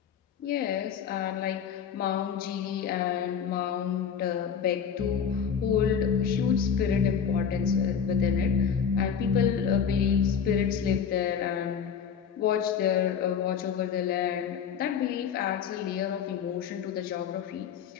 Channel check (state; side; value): quieter; right; 7.3 dB